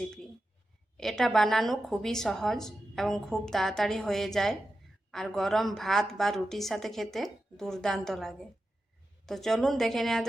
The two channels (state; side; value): normal; both; correlation 0.91